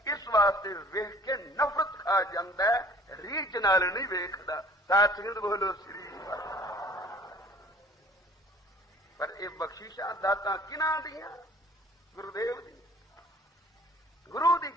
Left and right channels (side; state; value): both; normal; correlation 0.51